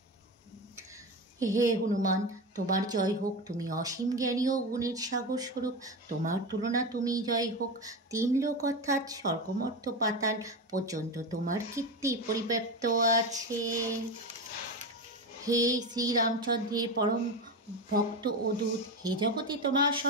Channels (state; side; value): normal; both; correlation 0.19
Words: হে হনুমান, তোমার জয় হোক, তুমি অসীম জ্ঞানী ও গুণের সাগর স্বরূপ। তোমার তুলনা তুমি জয় হোক। তিন লোক অর্থাৎ স্বর্গমর্ত্য পাতাল পর্যন্ত তোমার কীর্তি পরিব্যাপ্ত আছে। হে শ্রীরামচন্দ্রের পরম ভক্ত ও দূত, হে জগতে তোমার